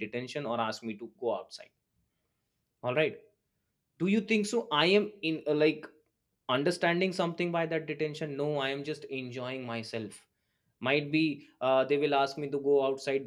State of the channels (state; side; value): identical; both; correlation 1.00